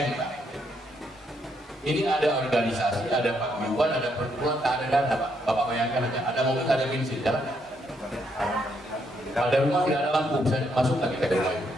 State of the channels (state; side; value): normal; both; correlation 0.75